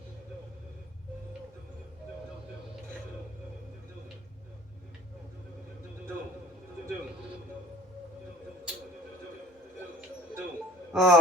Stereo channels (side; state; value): both; normal; correlation 0.48